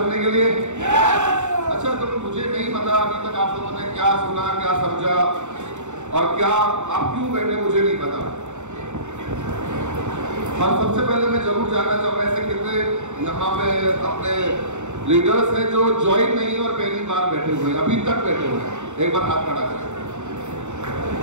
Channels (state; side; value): late; left; 0.84 ms